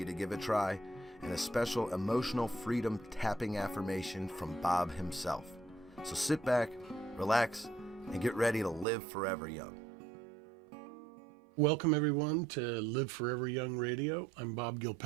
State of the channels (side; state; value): left; drops out; at 8.8 s